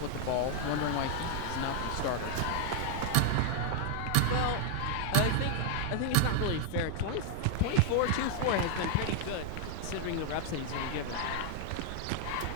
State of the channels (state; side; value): different; both; correlation 0.00